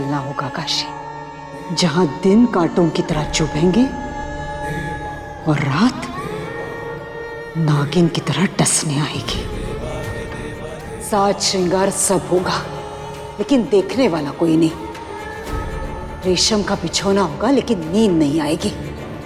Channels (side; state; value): both; identical; correlation 1.00